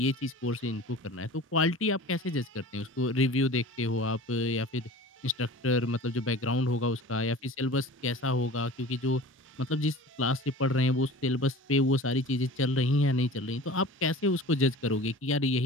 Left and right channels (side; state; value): both; normal; correlation 0.39